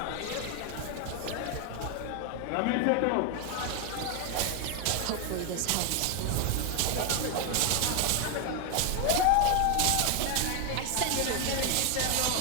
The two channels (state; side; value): different; both; correlation 0.01